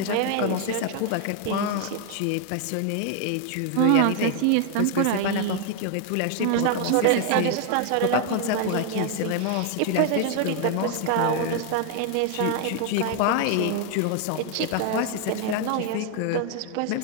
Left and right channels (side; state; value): both; different; correlation 0.00